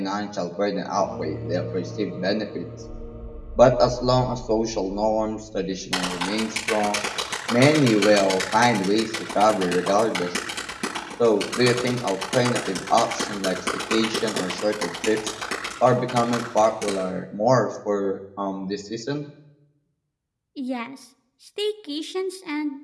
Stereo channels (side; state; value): both; identical; correlation 1.00